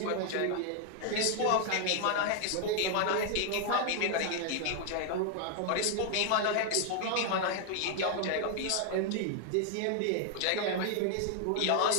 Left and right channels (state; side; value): different; both; correlation 0.00